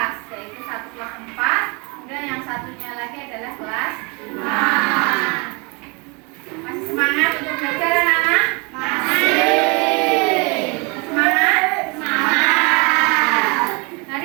yaitu satu kelas 4, kemudian yang satunya lagi adalah kelas 5. Masih semangat untuk belajar anak-anak? Masih. Semangat? Semangat.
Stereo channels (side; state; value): left; quieter; 30.7 dB